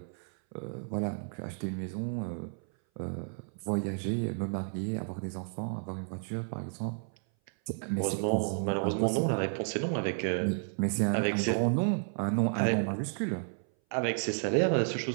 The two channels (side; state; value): left; silent; 56 dB below the other